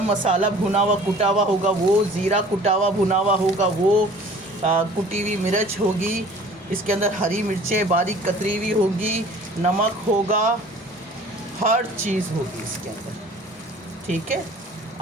मसाला भुना हुआ कुटा हुआ होगा, वो ज़ीरा कुटा हुआ भुना हुआ होगा, वो कुटी हुई मिर्च होगी, इसके अंदर हरी मिर्चें बारीक कतरी हुई होगी, नमक होगा, हर चीज़ होगी इसके अंदर, ठीक है।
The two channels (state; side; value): normal; both; correlation 0.48